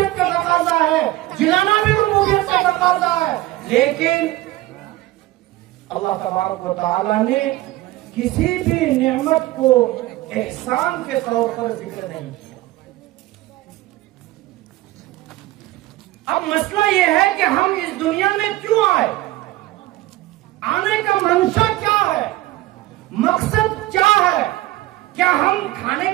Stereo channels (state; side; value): quieter; left; 17.3 dB